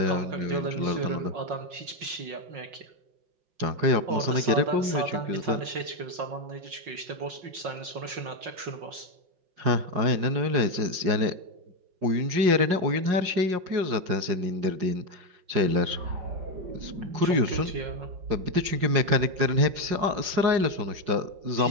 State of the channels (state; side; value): late; left; 5.5 ms